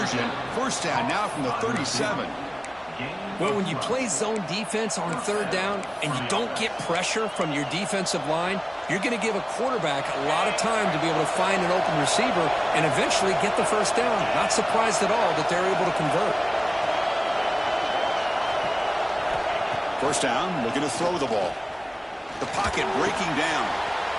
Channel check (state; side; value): identical; both; correlation 1.00